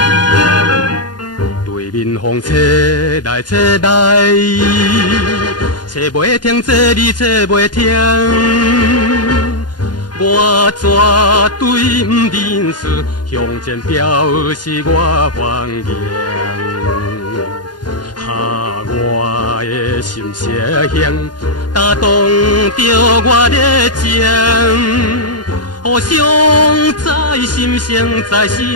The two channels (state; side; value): late; right; 0.70 ms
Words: 对面风吹来吹来，吹袂停，这里吹袂停。我绝对不认输，向前表示我欢迎。哈，我的心色响，打动着我的情，互相在心上，在